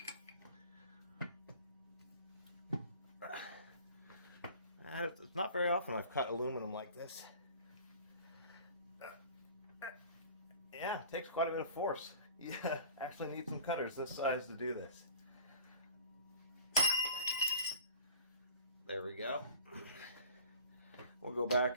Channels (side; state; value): both; inverted; correlation -0.46